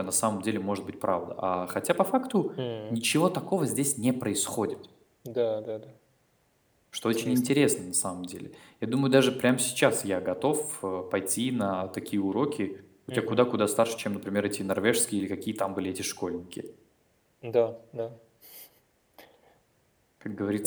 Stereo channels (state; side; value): identical; both; correlation 1.00